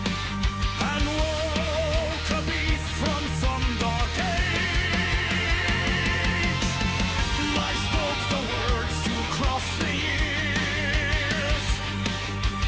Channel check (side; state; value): both; identical; correlation 1.00